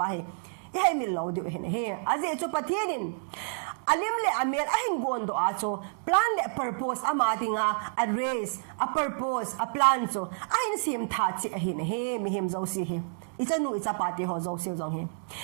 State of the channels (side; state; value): left; silent; digital silence